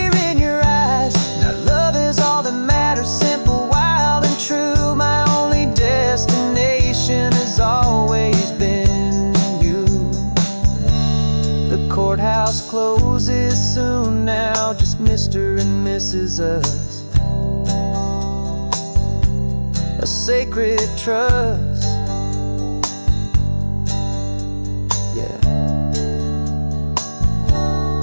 in your eyes. Now love is all that matters, simple, wild, and true. My only destination has always been you. The courthouse closes soon now, just Mr. and Mrs. Us. A sacred trust, yeah,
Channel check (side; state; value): both; inverted; correlation -1.00